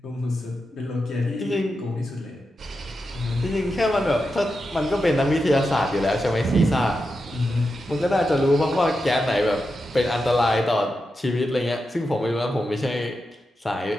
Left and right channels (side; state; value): both; normal; correlation 0.88